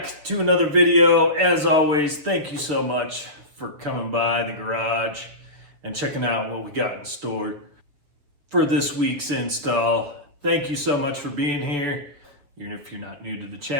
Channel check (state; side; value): late; left; 6.9 ms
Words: to another video. As always, thank you so much for coming by the garage and checking out what we got in store for this week's install. Thank you so much for being here. Even if you're not new to the